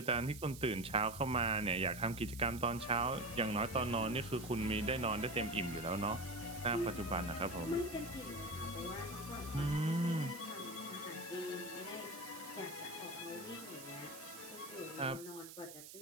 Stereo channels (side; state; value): right; noise; hiss, 14 dB below the sound